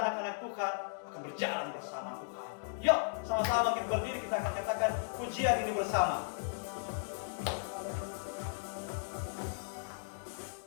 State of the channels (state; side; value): silent; right; digital silence